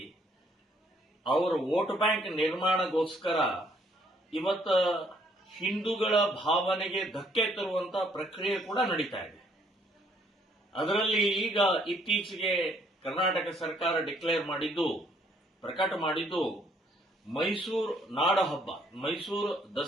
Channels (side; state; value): both; normal; correlation 0.66